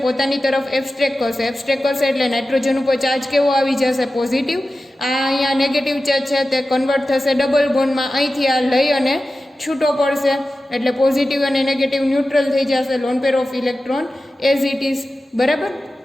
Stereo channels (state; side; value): normal; both; correlation 0.94